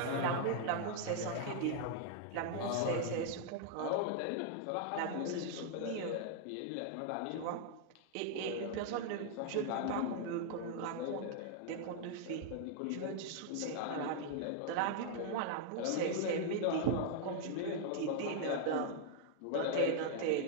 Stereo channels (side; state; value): both; different; correlation 0.00